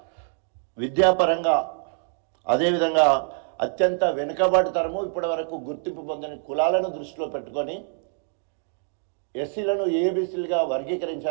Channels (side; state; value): left; silent; digital silence